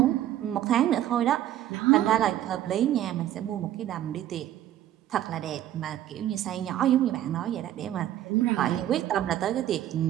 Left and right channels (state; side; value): quieter; left; 12.4 dB